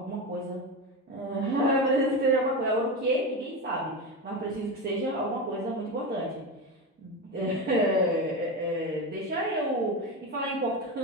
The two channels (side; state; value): both; normal; correlation 0.19